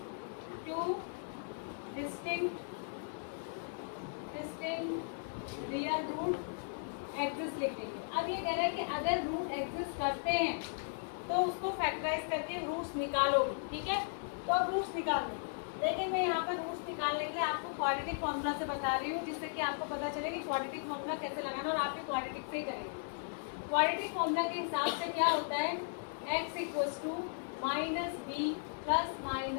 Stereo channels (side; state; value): right; silent; digital silence